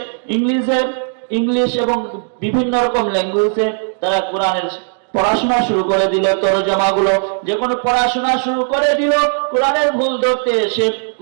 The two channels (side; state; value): left; silent; digital silence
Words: ইংলিশ এবং বিভিন্ন রকম ল্যাঙ্গুয়েজে তারা কোরআনের পড়াশোনা শুরু করে দিল, তরজমাগুলো যখন পড়াশোনা শুরু করে দিল, কোরআনের ভুল ধরতে এসে